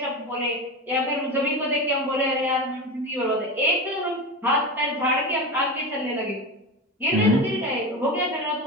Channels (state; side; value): normal; both; correlation 0.23